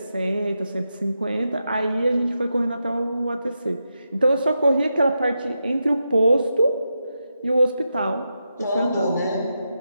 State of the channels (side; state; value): both; inverted; correlation -0.87